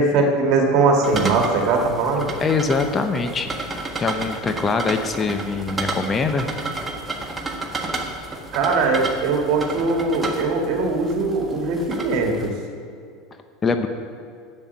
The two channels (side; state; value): both; normal; correlation 0.36